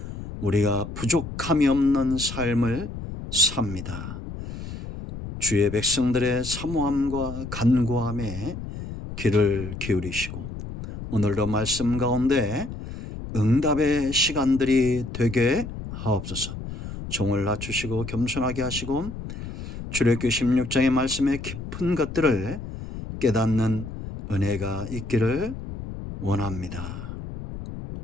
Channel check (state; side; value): noise; left; rumble, 9 dB below the sound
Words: 우리가 부족함이 없는 삶을 삽니다. 주의 백성들의 사모함과 간구함에 귀를 기울이시고 오늘도 말씀 가운데 응답의 시간들이 되게 하옵소서. 종을 낮추시고 겸손하게 하시고 출애굽기 16장의 말씀의 깊은 것들을 깨닫는 은혜가 있기를 원합니다.